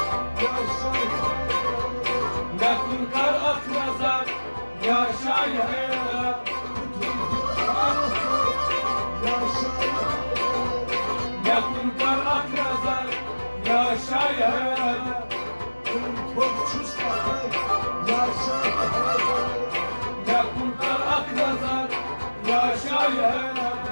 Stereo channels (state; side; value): inverted; both; correlation -1.00